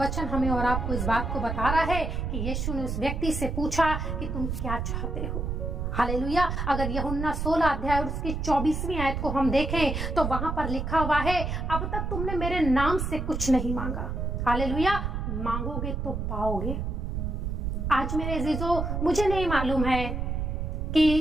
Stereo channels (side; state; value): right; noise; rumble, 2 dB below the sound